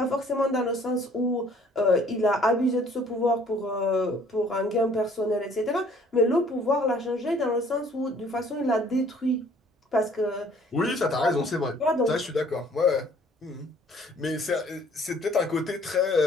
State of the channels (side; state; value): both; normal; correlation 0.57